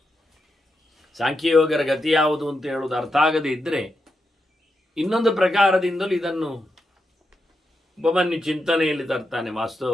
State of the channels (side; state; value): both; normal; correlation 0.86